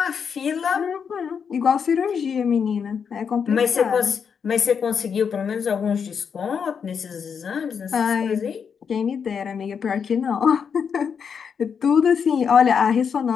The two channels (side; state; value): right; quieter; 6.7 dB